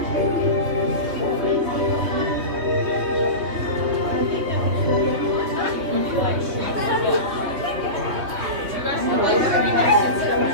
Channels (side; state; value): left; late; 3.4 ms